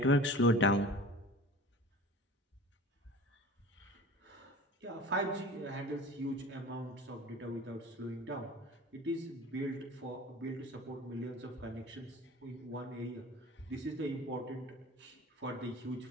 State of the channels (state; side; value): normal; both; correlation 0.39